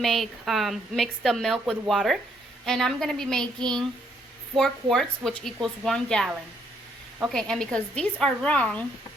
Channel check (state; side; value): normal; both; correlation 0.71